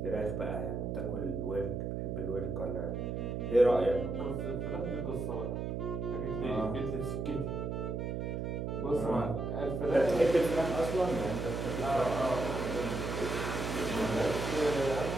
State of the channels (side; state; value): right; noise; hum, 2 dB below the sound